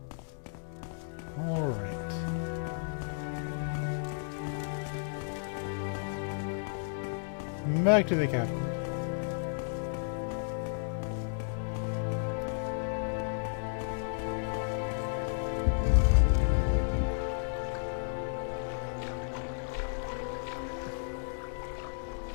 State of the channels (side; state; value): right; silent; digital silence